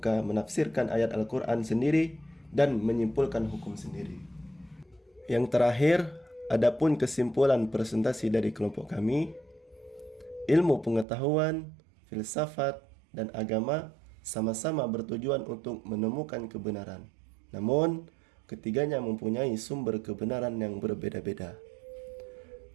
menafsirkan ayat Al-Quran sendiri dan menyimpulkan hukum sendiri. Yang terakhir, adapun kesimpulan presentasi dari kelompok kami, ilmu pengetahuan, filsafat, dan agama sama-sama bertujuan untuk menemukan kebenaran. Namun, ketiganya mempunyai sumber kebenaran yang berbeda-beda.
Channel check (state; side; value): drops out; left; at 11.1 s